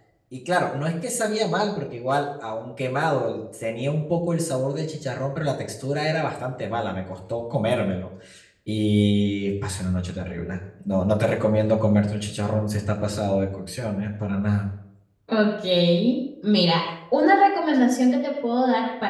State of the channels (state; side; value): identical; both; correlation 1.00